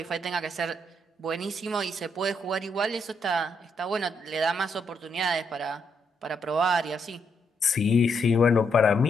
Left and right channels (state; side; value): normal; both; correlation 0.77